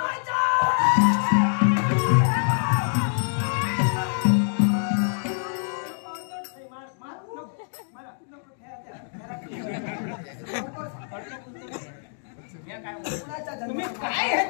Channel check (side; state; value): right; silent; 61 dB below the other